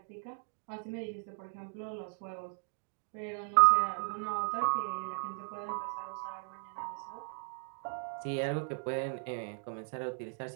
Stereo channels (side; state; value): left; silent; 54 dB below the other